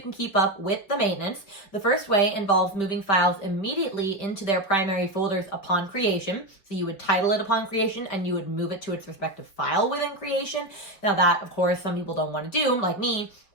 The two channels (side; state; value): right; late; 5.3 ms